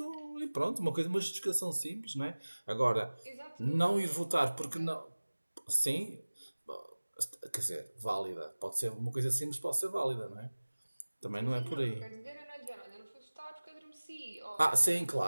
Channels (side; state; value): both; inverted; correlation -1.00